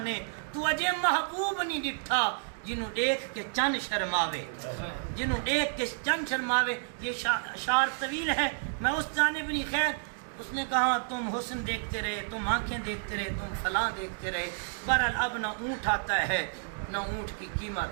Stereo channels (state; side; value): silent; left; digital silence